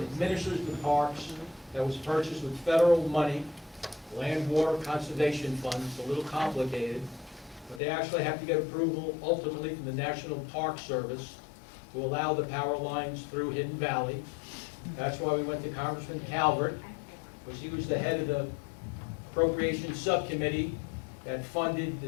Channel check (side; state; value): right; drops out; at 7.8 s